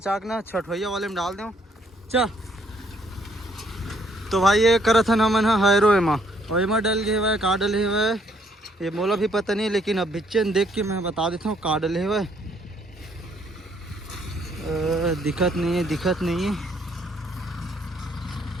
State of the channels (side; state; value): both; normal; correlation 0.67